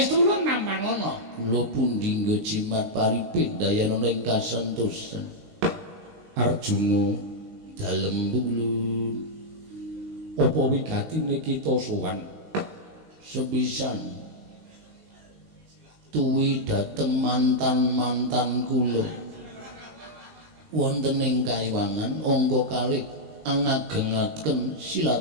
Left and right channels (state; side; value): late; left; 19 ms